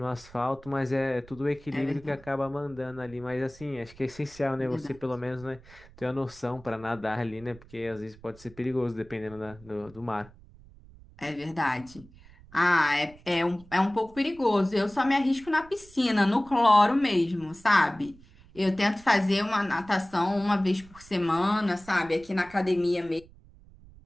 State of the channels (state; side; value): noise; right; rumble, 23 dB below the sound